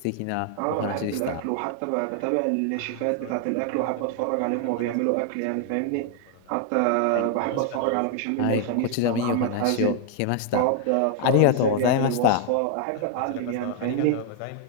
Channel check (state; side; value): different; both; correlation 0.00